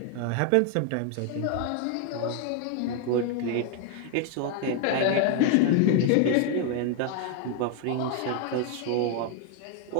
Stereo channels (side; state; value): both; different; correlation 0.00